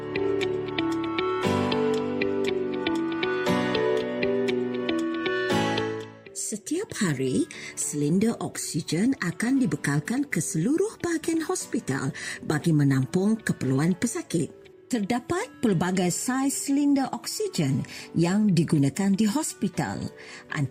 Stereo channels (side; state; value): both; identical; correlation 1.00